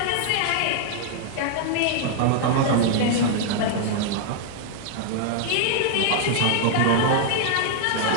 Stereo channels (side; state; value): both; different; correlation 0.00